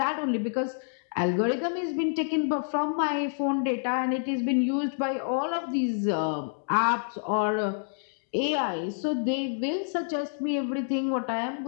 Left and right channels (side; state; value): right; silent; digital silence